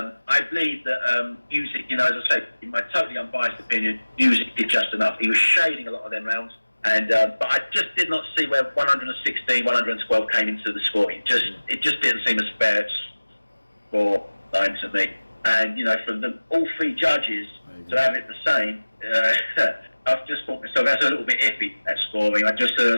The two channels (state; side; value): inverted; both; correlation -1.00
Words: I believe that Music, you know, as I say, in my totally unbiased opinion, Music did just enough. He was shading a lot of them rounds. And but I just did not see where 116, 112 came into the scoring. It just didn't seem a fair score line to me. And you know, from all three judges to have it the same, I've just thought myself that's a little bit iffy, that scoring. I just